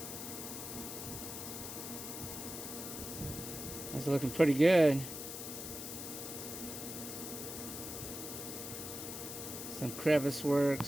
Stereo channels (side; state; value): left; noise; hiss, 7 dB below the sound